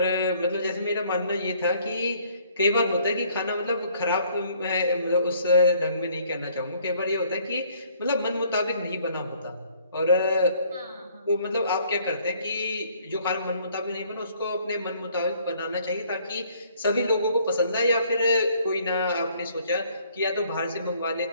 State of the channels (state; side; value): inverted; both; correlation -0.62